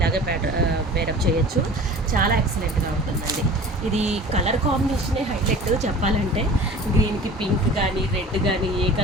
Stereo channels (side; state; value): both; normal; correlation 0.41